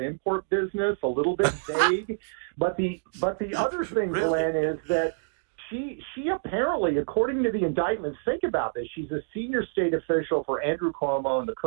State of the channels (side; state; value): left; silent; digital silence